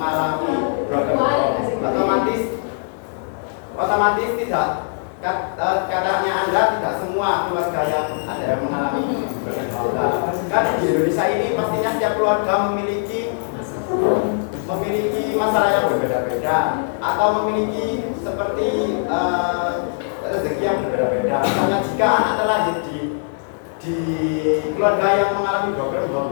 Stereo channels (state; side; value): silent; right; digital silence